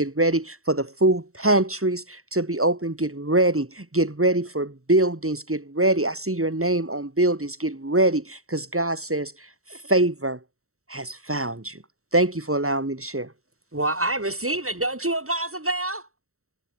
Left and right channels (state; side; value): late; left; 0.64 ms